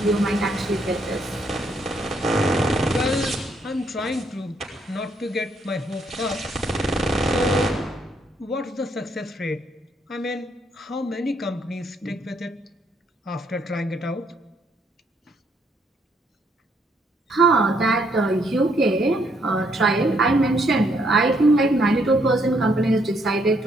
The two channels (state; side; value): normal; both; correlation 0.71